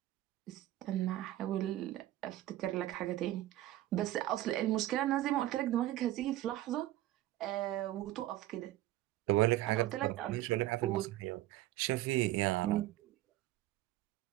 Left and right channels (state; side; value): quieter; left; 15.1 dB